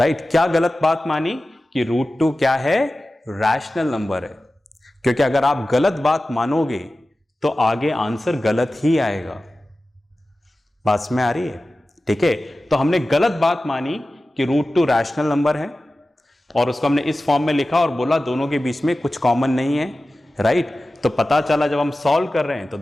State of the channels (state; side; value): normal; both; correlation 0.95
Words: क्या गलत बात मानी, कि √2 क्या है, रैशनल नंबर है। क्योंकि अगर आप गलत बात मानोगे तो आगे आंसर गलत ही आएगा। बात में आ रही है, ठीक है। तो हमने गलत बात मानी कि √2 रैशनल नंबर है, और उसको हमने इस फॉर्म में लिखा और बोला दोनों के बीच में कुछ कॉमन नहीं है, राइट। तो पता चला जब हम सॉल्व कर रहे हैं तो